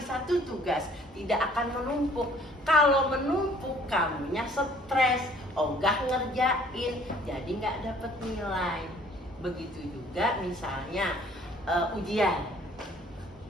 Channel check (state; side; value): normal; both; correlation 0.57